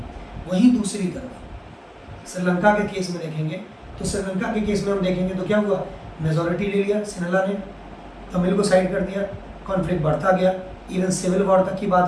वहीं दूसरी तरफ श्रीलंका के केस में देखेंगे तो श्रीलंका के केस में हम देखेंगे तो क्या हुआ, मेजॉरिटी ले लिया सिनेला ने, तमिल को साइड कर दिया, कॉन्फ्लिक्ट बढ़ता गया, इवन सिविल वॉर तक की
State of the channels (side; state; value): both; identical; correlation 1.00